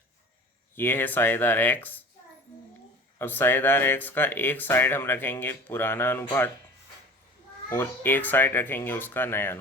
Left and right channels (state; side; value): normal; both; correlation 0.41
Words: ये है साझेदार एक्स। अब साझेदार एक्स का एक साइड हम रखेंगे पुराना अनुपात और एक साइड रखेंगे उसका नया